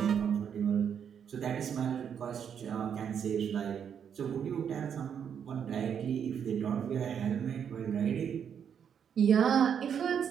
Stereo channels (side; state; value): left; quieter; 7.9 dB